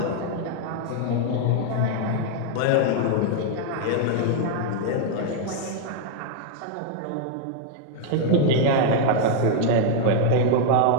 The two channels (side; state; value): both; different; correlation 0.00